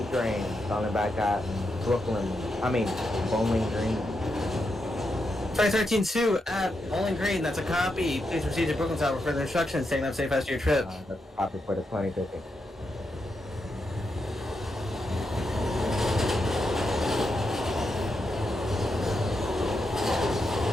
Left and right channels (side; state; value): both; normal; correlation 0.84